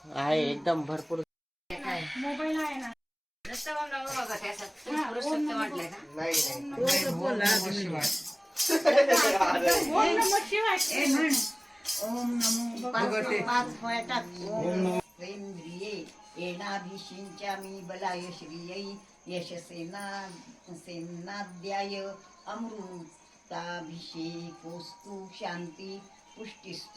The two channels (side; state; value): both; identical; correlation 1.00